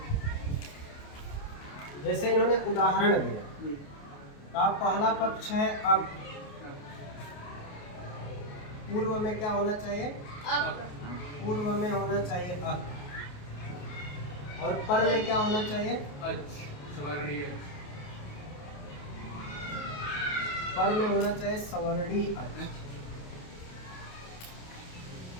जैसे इन्होंने उदाहरण दिया, आप पहला पक्ष है अब, पूर्व में क्या होना चाहिए? पूर्व में होना चाहिए अक, और पर में क्या होना चाहिए? पर में होना चाहिए सवर्णी अच।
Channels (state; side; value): late; right; 28 ms